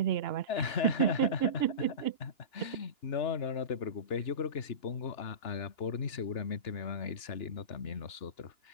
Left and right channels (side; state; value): right; late; 2.9 ms